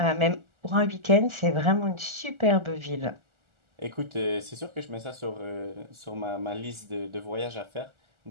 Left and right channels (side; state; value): left; late; 1.4 ms